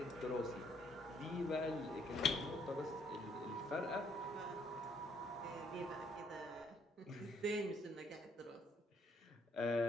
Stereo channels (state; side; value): normal; both; correlation 0.67